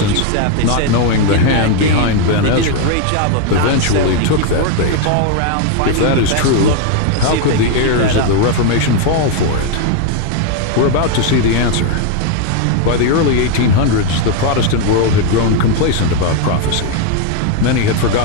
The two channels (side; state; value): both; different; correlation 0.01